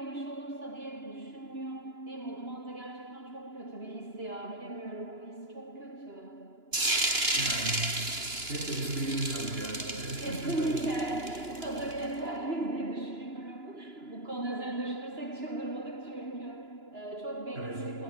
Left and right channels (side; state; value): left; late; 2.9 ms